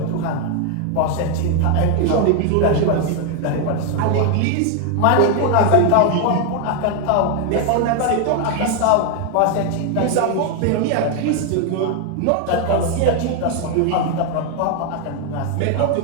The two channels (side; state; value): both; different; correlation 0.01